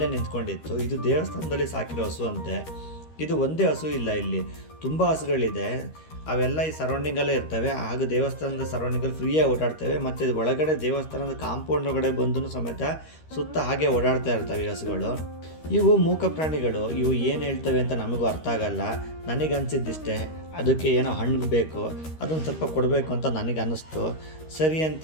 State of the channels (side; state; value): right; late; 13 ms